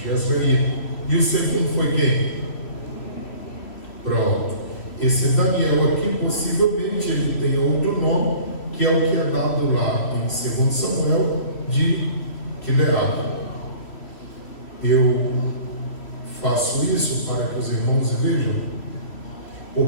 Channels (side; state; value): right; late; 3.1 ms